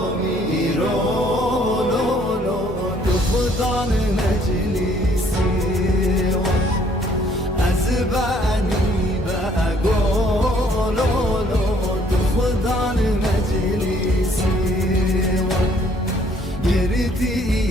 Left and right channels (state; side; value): normal; both; correlation 0.62